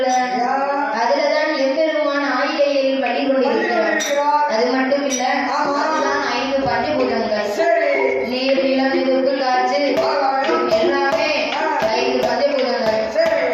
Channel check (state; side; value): identical; both; correlation 1.00